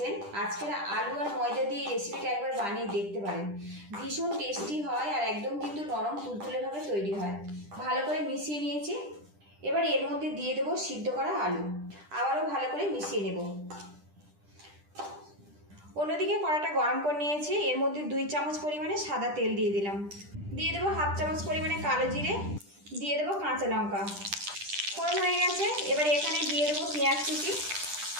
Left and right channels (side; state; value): left; late; 10 ms